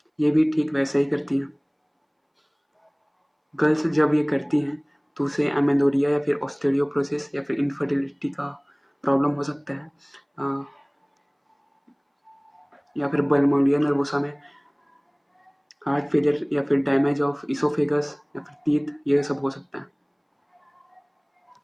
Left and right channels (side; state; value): both; identical; correlation 1.00